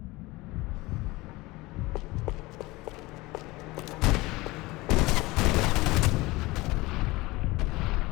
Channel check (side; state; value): right; quieter; 21.2 dB